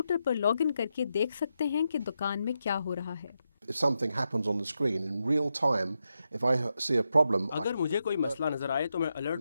پر لاگ ان کر کے دیکھ سکتے ہیں کہ دکان میں کیا ہو رہا ہے۔ اگر مجھے کوئی مسئلہ نظر آئے تو میں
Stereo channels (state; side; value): inverted; both; correlation -0.86